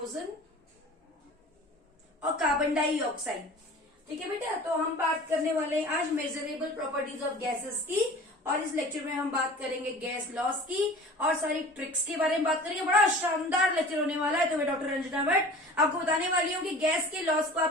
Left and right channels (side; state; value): both; normal; correlation 0.42